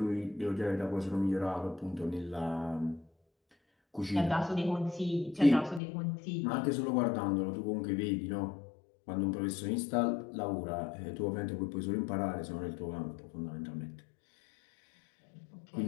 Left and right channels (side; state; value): right; drops out; at 5.8 s